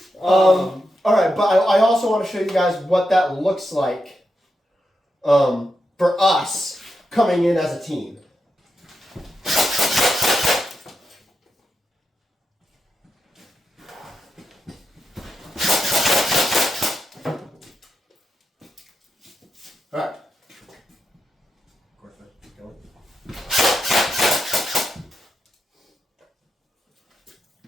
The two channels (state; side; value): normal; both; correlation 0.86